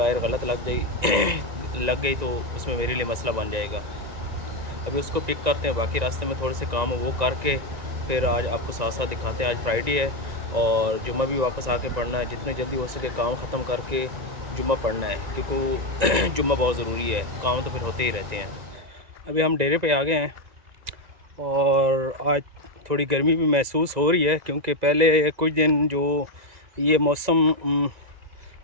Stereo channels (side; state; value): left; late; 1.9 ms